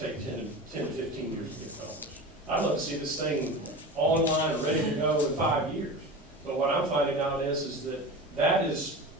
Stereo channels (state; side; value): normal; both; correlation 0.30